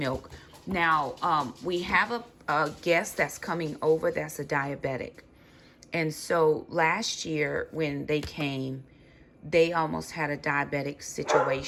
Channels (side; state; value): both; identical; correlation 1.00